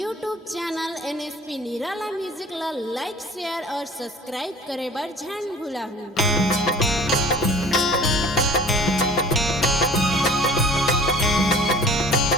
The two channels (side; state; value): both; normal; correlation 0.45